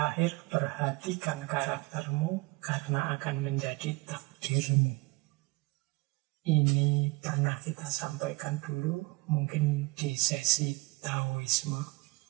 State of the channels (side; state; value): left; quieter; 24.6 dB